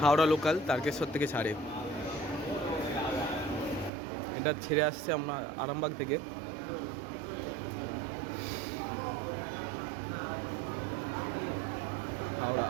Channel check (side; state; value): left; drops out; at 3.9 s